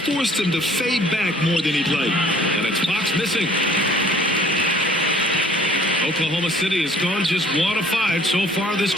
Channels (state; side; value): normal; both; correlation 0.55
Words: him to fade back more than he'd like. And it's Fox missing. Oklahoma City has gone just 1 of 5 so far this